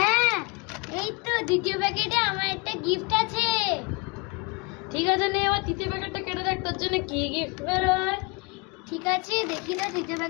এই তো দ্বিতীয় প্যাকেটে আমার একটা গিফট আছে। ঠিক আছে, নে এবার তৃতীয় প্যাকেটটা কেটে দেখ তোর জন্য কি গিফট বেরোয়। ঠিক আছে, দেখি না তৃতীয়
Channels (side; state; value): right; quieter; 29.1 dB